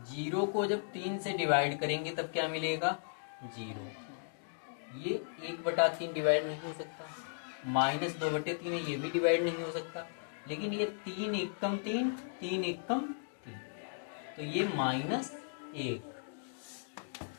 जीरो को जब 3 से डिवाइड करेंगे तब क्या मिलेगा? 0। ये 1/3 डिवाइड नहीं हो सकता, -2/3 है, ये भी डिवाइड नहीं हो सकता, लेकिन ये 3 एकम 3, 3 एकम 3, तो ये -1।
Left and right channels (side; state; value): right; silent; digital silence